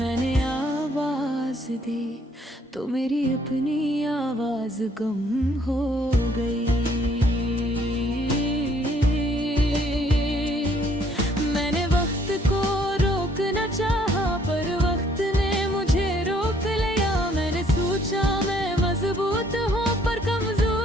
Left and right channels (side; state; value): both; normal; correlation 0.64